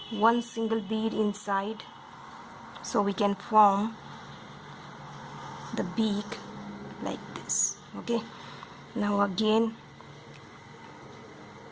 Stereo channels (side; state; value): both; identical; correlation 1.00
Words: 1 single bead inside so we can form the beak like this. Okay, now again